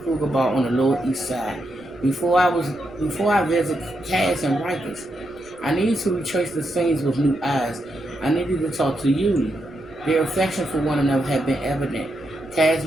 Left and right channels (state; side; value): noise; right; rumble, 25 dB below the sound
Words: Kruger Bar on the Lower East Side. Before I visit Cass and Rikers, I needed to retrace the scenes with new eyes. I needed to talk to Yuli. Their affection for one another had been evident. Cass'